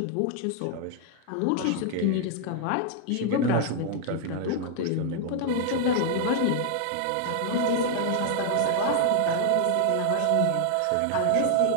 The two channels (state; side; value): different; both; correlation 0.00